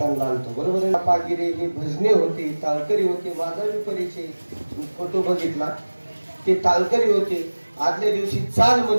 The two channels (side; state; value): both; inverted; correlation -1.00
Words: आलतो, बरोबर आहे. पागिरे ही भजने होती, ताळकरी होते. माझा मी परिचय फोटो बघितला, ते ताळकरी होते. आदल्या दिवशी चाल